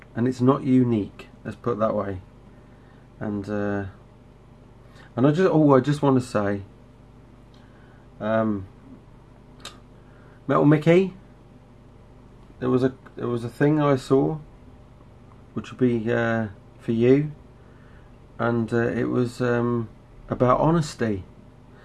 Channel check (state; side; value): identical; both; correlation 1.00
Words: it's not unique. Let's put it that way. And I just want to say, Metal Mickey. There was a thing I saw, which would be for you, and it was about honesty.